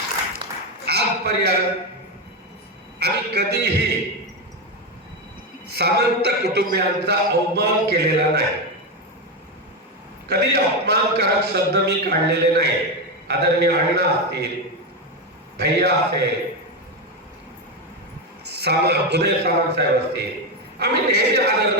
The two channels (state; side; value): normal; both; correlation 0.11